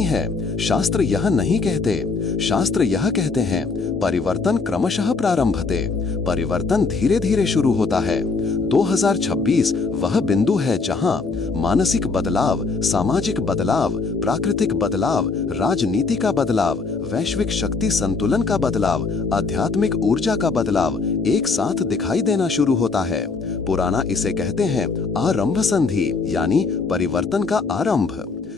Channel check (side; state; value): right; quieter; 4.3 dB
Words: है। शास्त्र यह नहीं कहते। शास्त्र यह कहते हैं, परिवर्तन क्रमशः प्रारंभते, परिवर्तन धीरे धीरे शुरू होता है। 2026 वह बिंदु है जहां मानसिक बदलाव, सामाजिक बदलाव, प्राकृतिक बदलाव, राजनीति का बदलाव, वैश्विक शक्ति संतुलन का बदलाव, आध्यात्मिक ऊर्जा का बदलाव एक साथ दिखाई देना शुरू होता है। पुराना इसे कहते हैं आरंभ संधि, यानी परिवर्तन का आरंभ।